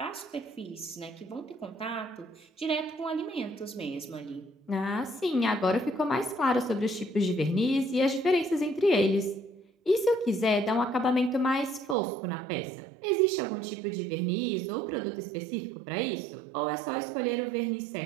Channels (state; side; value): drops out; left; at 12.0 s